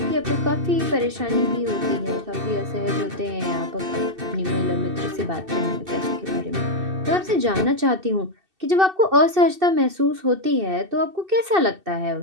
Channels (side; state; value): left; late; 2.7 ms